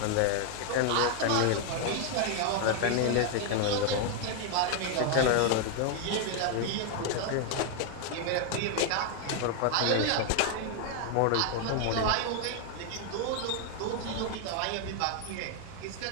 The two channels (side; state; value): both; different; correlation 0.00